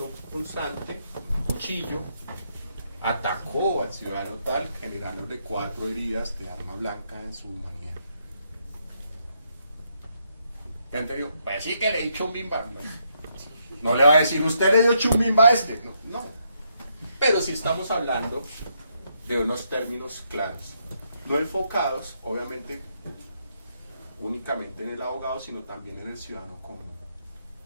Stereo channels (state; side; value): inverted; both; correlation -0.77